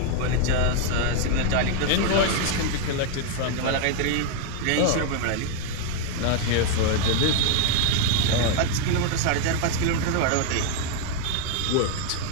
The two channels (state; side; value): different; both; correlation 0.01